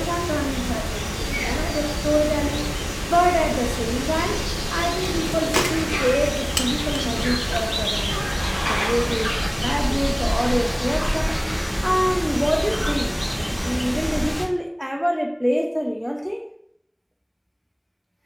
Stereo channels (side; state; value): both; identical; correlation 1.00